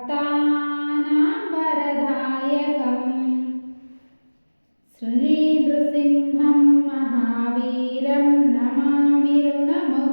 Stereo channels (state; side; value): inverted; both; correlation -1.00